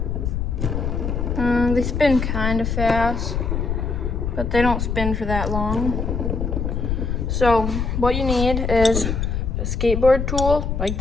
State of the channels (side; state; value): left; noise; rumble, 1 dB below the sound